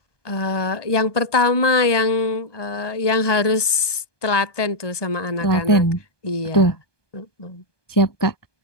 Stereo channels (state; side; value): late; right; 1.2 ms